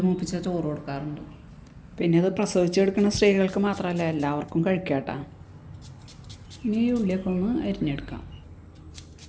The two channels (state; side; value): identical; both; correlation 1.00